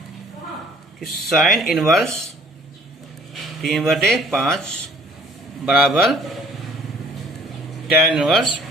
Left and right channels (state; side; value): normal; both; correlation 0.55